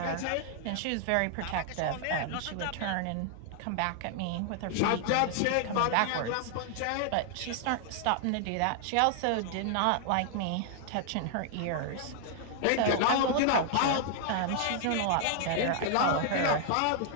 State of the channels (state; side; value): different; both; correlation 0.00